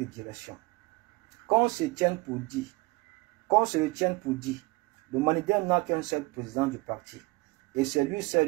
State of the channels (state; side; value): quieter; left; 23.4 dB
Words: direction. Qu'on se le tienne pour dit, le Manidem n'a qu'un seul président du parti, et c'est lui